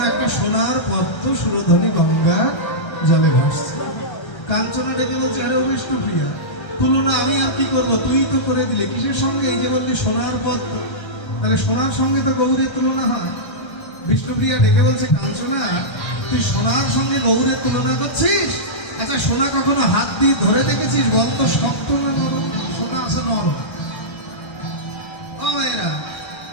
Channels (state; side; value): late; right; 1.3 ms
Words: একটা সোনার পদ্ম সুরধনী গঙ্গা জলে ভাসছে। কাঞ্চনা ডেকে বলছে, আরে বিষ্ণুপ্রিয়া, তুলনা আমি আর কি করবো, তুই তো করে দিলে, কিসের সঙ্গে? এই যে বললি সোনার পদ্ম, তাহলে সোনার সঙ্গে তো গৌরের তুলনা হয়। বিষ্ণুপ্রিয়া ডেকে বলছে, কাঞ্চনা, তুই সোনার সঙ্গে গৌরের তুলনা করছিস? আচ্ছা, সোনা কখনো হাত দিয়ে ধরে দেখেছিস? বল তো শক্ত না নরম? সোনা আছে নরম। ও এরা,